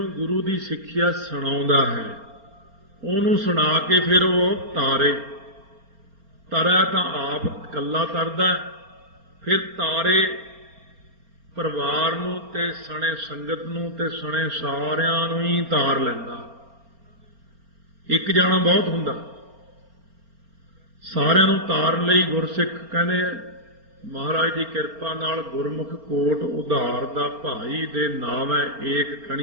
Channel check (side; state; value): left; late; 4.4 ms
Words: ਗੁਰੂ ਦੀ ਸਿੱਖਿਆ ਸੁਣਾਉਂਦਾ ਹੈ, ਉਹਨੂੰ ਸੁਣਾ ਕੇ ਫਿਰ ਉਹ ਤਾਰੇ। ਤਰੈ ਤਾਂ ਆਪ ਇਕੱਲਾ ਤਰਦਾ, ਫਿਰ ਤਾਰੇ ਪਰਿਵਾਰ ਨੂੰ ਤੇ ਸਣੇ ਸੰਗਤ ਨੂੰ ਤੇ ਸਣੇ ਸਾਰਿਆਂ ਨੂੰ ਹੀ ਤਾਰ ਲੈਂਦਾ। ਇੱਕ ਜਾਣਾ ਬਹੁਤ ਹੁੰਦਾ, ਸਾਰਿਆਂ ਨੂੰ ਤਾਰਨ ਲਈ ਗੁਰਸਿੱਖ ਕਹਿੰਦੇ ਮਹਾਰਾਜ ਦੀ ਕਿਰਪਾ ਨਾਲ ਗੁਰਮੁਖ ਕੋਟ ਉਧਾਰ ਦਾ ਭਾਈ ਦੇ ਨਾਮ ਹੈ ਏਕ